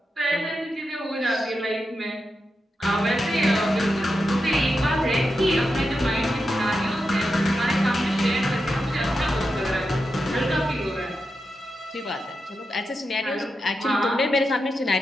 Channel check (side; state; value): both; normal; correlation 0.88